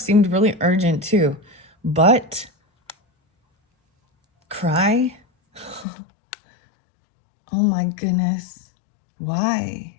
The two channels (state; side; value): drops out; right; at 5.9 s